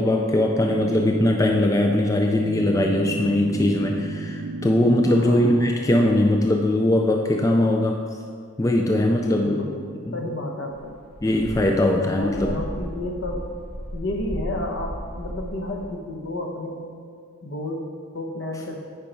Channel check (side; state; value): both; normal; correlation 0.75